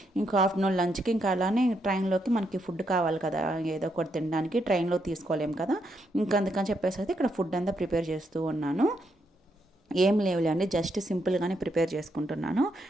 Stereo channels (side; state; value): both; normal; correlation 0.78